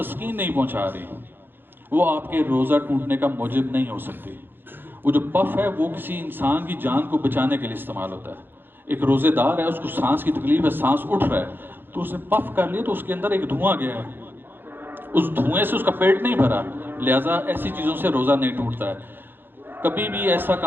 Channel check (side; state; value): left; late; 0.099 ms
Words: نہیں پہنچا رہی وہ آپ کے روزہ ٹوٹنے کا موجب نہیں ہو سکتی. وہ جو پف ہے وہ کسی انسان کی جان کو بچانے کے لیے استعمال ہوتا ہے. ایک روزے دار ہے، اس کو سانس کی تکلیف ہے، سانس اٹھ رہا ہے، تو اس نے پف کر لیا تو اس کے اندر ایک دھواں گیا ہے، اس دھوئیں سے اس کا پیٹ نہیں بھرا، لہٰذا ایسی چیزوں سے روزہ نہیں ٹوٹتا ہے. کبھی بھی ایسا